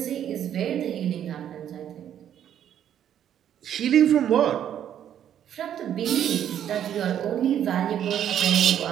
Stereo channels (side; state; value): left; quieter; 10.0 dB